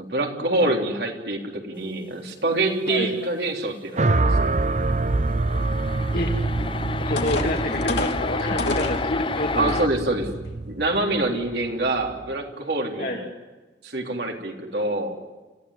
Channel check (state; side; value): normal; both; correlation 0.31